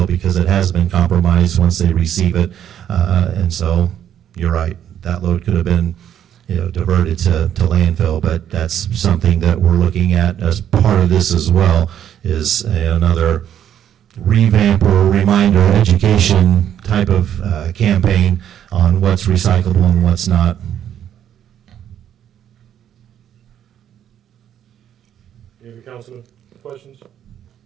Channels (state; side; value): quieter; left; 10.1 dB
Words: because it has been compromised once they receive it. And so you're right, that load could have been, you know, diverted to landfill, but that's something that we're looking at as part of this as well, is another revamp or reminder education type of campaign on what's recyclable and what's not. Any other councilman questions?